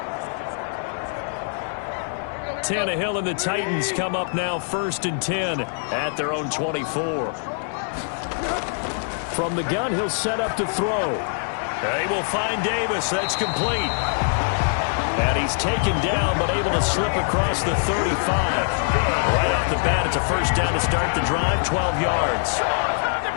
Tannehill and the Titans come up now 1st and 10 at their own 24. From the gun, he'll set up to throw. They will find Davis. That's complete. And he's taken down, but able to slip across the 35. Right off the bat, it's a first down to start the drive, 12 yards.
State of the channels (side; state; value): right; silent; 62 dB below the other